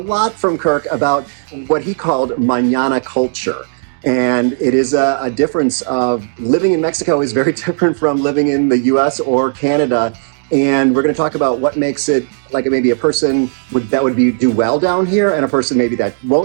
from Kirk about what he called mañana culture. And it is a difference of living in Mexico is very different from living in the US or Canada. And we're going to talk about what makes it like maybe a person that would do well down here and a person maybe that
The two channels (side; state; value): left; silent; digital silence